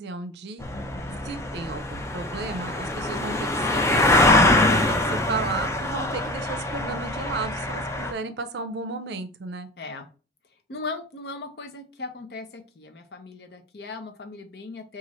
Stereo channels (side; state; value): both; normal; correlation 0.32